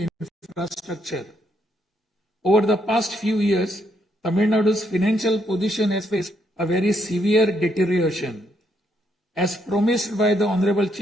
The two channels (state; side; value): normal; both; correlation 0.75